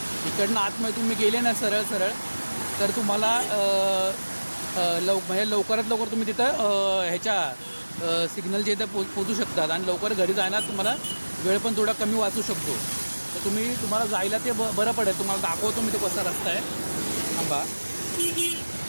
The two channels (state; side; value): inverted; both; correlation -1.00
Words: इकडनं आतमध्ये तुम्ही गेले ना सरळ तर तुम्हाला म्हणजे लवकरात लवकर तुम्ही तिथं ह्याच्या सिग्नलच्या इथं पोचू शकतात आणि लवकर घरी जायला तुम्हाला वेळ पण थोडा कमी वाचू शकतो. तर तुम्हाला जायला ते बरं पडेल. तुम्हाला दाखवतो मी तो कसा रस्ता आहे. थांबा,